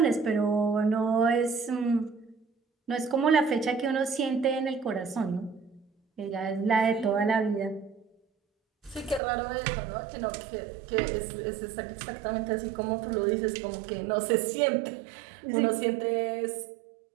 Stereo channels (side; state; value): left; drops out; at 9.2 s